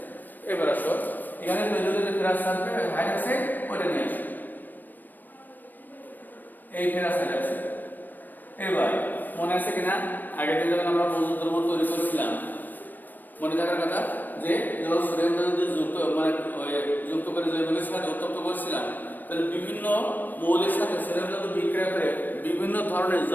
এবার আসো এখানে তৈরি হতে ফেরাস সালফেট হাইড্রোক্সাইড ওটা নিয়ে আসো, এই ফেরাস হাইড্রোক্সাইড। এবার মনে আছে কিনা আগের দিন যখন আমরা মজুদ দ্রব্য তৈরি করেছিলাম মনে থাকার কথা যে যখন সোডিয়াম যদি যুক্ত করে জৈবিকের সাথে উত্তপ্ত করেছিলাম তাহলে বিভিন্ন মৌলের সাথে সোডিয়াম ধাতু বিক্রিয়া করে বিভিন্ন ধরনের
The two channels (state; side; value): late; right; 0.089 ms